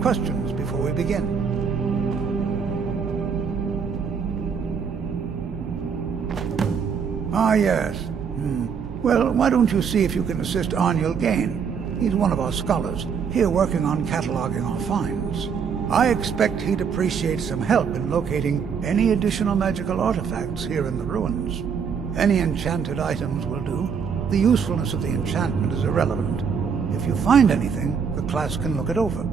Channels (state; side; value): quieter; left; 6.5 dB